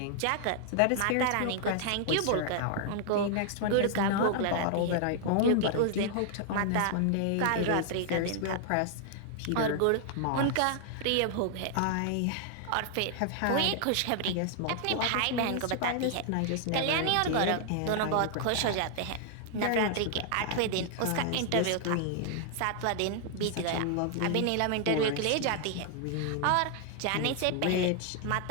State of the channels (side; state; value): both; different; correlation 0.00